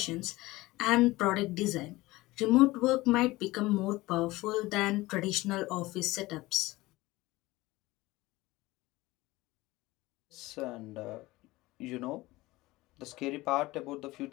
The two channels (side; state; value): right; quieter; 19.5 dB